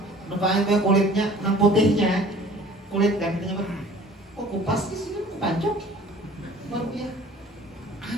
nampaknya kayak kulitnya, nang putihnya, kulit kan kita nyebut. Kok kupas sih Sidin kepancok, baru ya.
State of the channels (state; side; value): normal; both; correlation 0.49